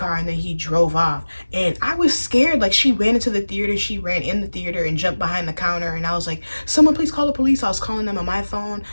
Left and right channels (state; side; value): inverted; both; correlation -1.00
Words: and then he drove off. And I was scared. Like, she ran into the theater. She ran in the theater and jumped behind the counter. And I was like, someone please call the police. I was calling them on my phone.